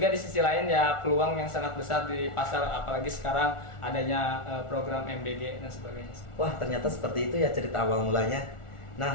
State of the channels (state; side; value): late; right; 1.4 ms